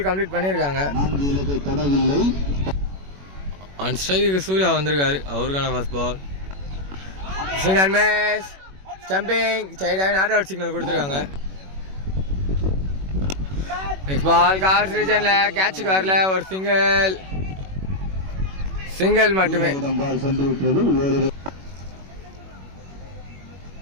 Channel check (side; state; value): left; late; 21 ms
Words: கம்ப்ளீட் பண்ணியிருக்காங்க. ஆன் ஸ்ட்ரைக்கு சூர்யா வந்திருக்காரு, அவருக்கான first ball. Swing and miss, stumping, ஸ்ட்ரைட்டாகவே நாட் அவுட் சிக்னல் கொடுத்துருக்காங்க. நெக்ஸ்ட் பால் கார்ஸ் ரீஜன்ல கேட்சுக்கு வரல, ஒரு சிங்கிள் மட்டுமே.